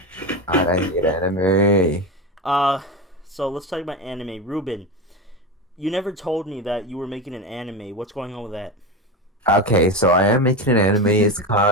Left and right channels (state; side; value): normal; both; correlation 0.20